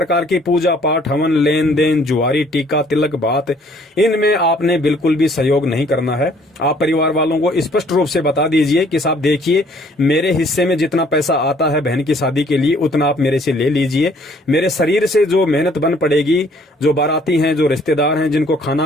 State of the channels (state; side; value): normal; both; correlation 0.60